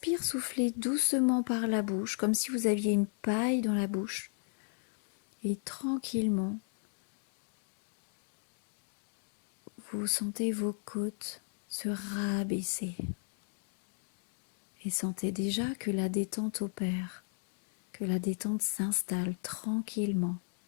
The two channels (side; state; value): right; silent; 54 dB below the other